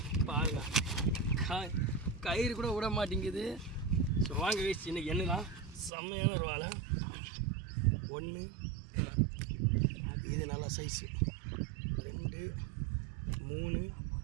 பாருங்க கயிறு கூட விட மாட்டேங்குது ஸோ வாங்க காய்ஸ் இன்னைக்கு என்னதான் செம்மையான ஒரு வாழை 1 இது நல்லா சைஸு 2 3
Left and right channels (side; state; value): left; drops out; at 5.9 s